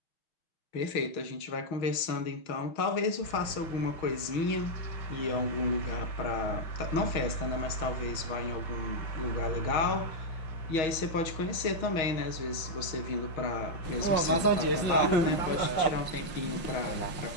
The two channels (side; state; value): right; late; 6.3 ms